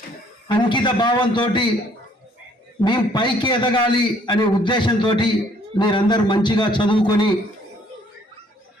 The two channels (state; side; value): normal; both; correlation 0.62